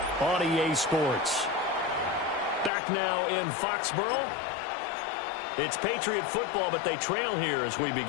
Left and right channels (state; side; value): drops out; right; at 2.7 s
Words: on EA Sports. Back now in Foxborough. It's Patriot football, but they trail here as we